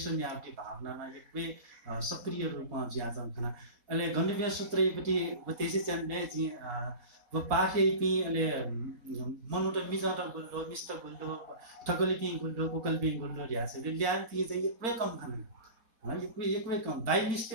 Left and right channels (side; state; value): left; late; 4.1 ms